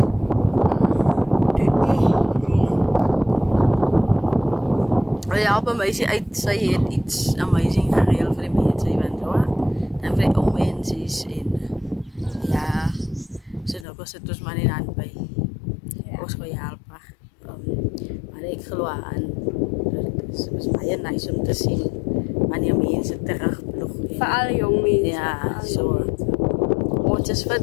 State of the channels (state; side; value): drops out; right; at 13.9 s